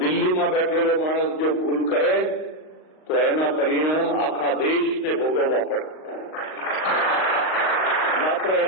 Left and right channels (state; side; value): late; right; 38 ms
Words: દિલ્હીમાં બેઠેલો માણસ જો ભૂલ કરે તો એના પરિણામ આખા દેશને ભોગવવા પડે. માત્ર